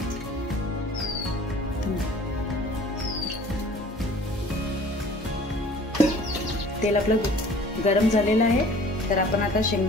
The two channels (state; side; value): normal; both; correlation 0.49